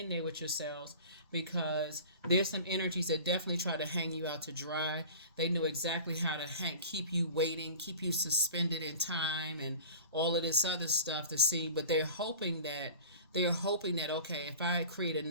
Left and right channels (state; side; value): inverted; both; correlation -0.40